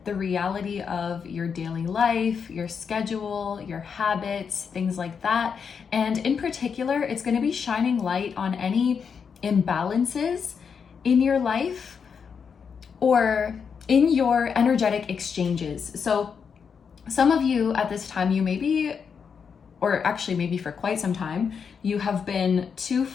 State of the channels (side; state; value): right; quieter; 6.4 dB